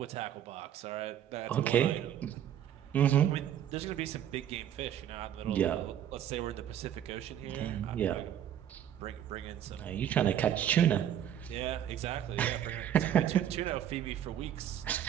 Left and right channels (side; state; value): left; quieter; 10.3 dB